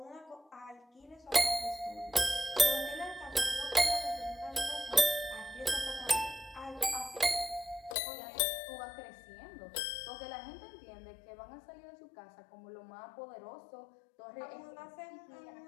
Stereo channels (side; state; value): right; drops out; at 8.0 s